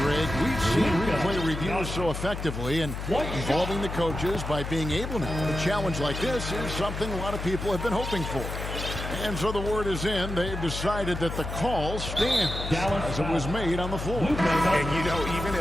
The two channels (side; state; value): left; noise; hum, 6 dB below the sound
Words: Greg. We've seen replay reviews so effectively, and involving the coaches by being able to. A challenge like this is something a lot of people have been hoping for. And so the word is in. They've decided that the call stands as it was made on the floor. And, you know, even